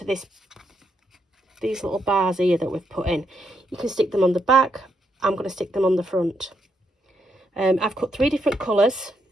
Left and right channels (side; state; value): both; normal; correlation 0.79